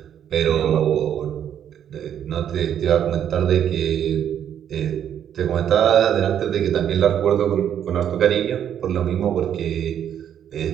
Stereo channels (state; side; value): quieter; left; 9.6 dB